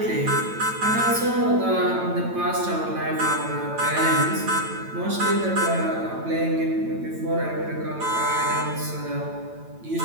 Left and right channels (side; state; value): left; late; 9.0 ms